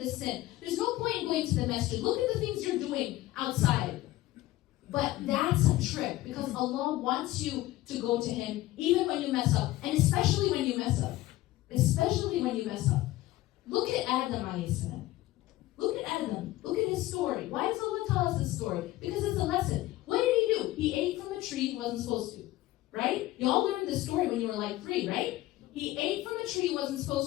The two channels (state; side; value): quieter; right; 16.8 dB